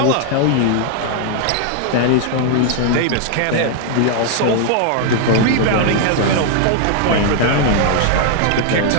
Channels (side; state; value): both; different; correlation 0.00